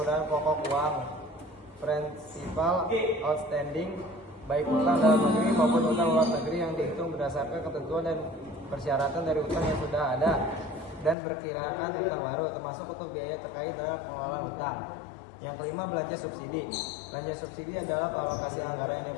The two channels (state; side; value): drops out; right; at 11.2 s